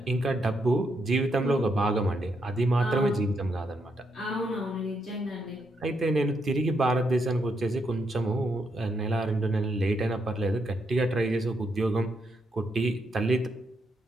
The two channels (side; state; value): both; normal; correlation 0.79